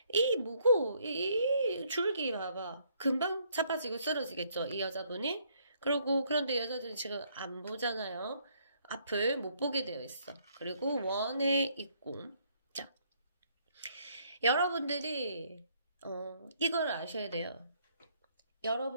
이 줄기 봐봐. 금방 자빠지고 쓰러지겠죠, 이 여자분이? 그런데 여자들은 지금 안 보잖아요. 앞을 못 보게 되어 있어. 그리고 원에 있고. 자, 여러분들이 이걸 아셔야 돼요.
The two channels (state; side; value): inverted; both; correlation -0.68